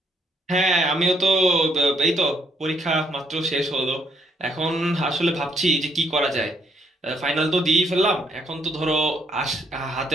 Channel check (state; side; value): normal; both; correlation 0.71